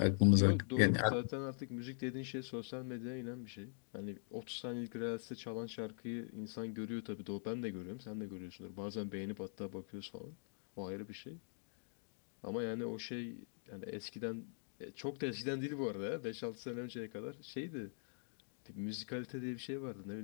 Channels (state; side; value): silent; right; digital silence